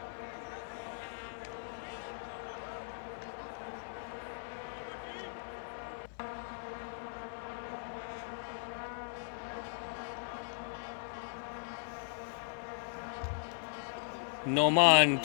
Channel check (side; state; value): right; silent; digital silence